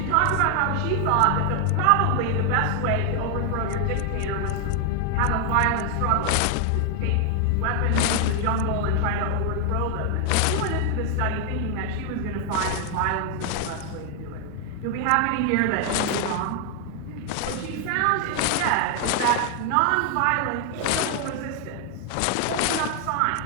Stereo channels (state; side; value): different; both; correlation 0.00